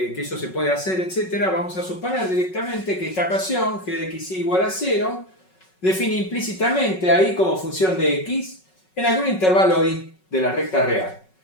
eso se puede hacer, etc., vamos a suponer directamente que esta ecuación, g de x igual a 0, define implícitamente ahí como función de x en algún intervalo i de la recta real.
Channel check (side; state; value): right; late; 5.4 ms